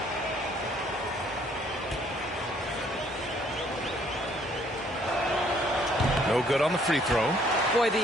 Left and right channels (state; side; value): normal; both; correlation 0.63